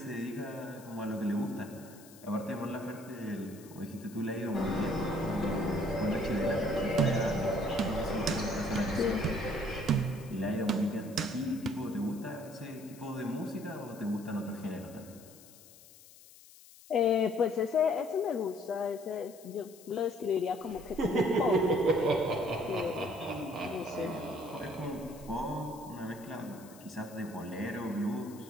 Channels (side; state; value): left; noise; hiss, 21 dB below the sound